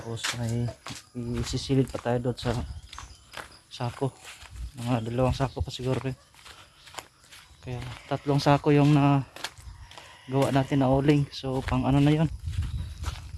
may isisilid pa tayo doon sa sako. Mga dalawang sako pa siguro rin. Kaya tatlong sako yung na gawa natin na uling. So, pang ano na yon.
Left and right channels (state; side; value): identical; both; correlation 1.00